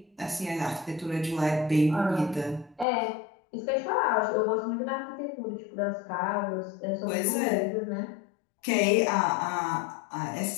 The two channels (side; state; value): right; drops out; at 2.9 s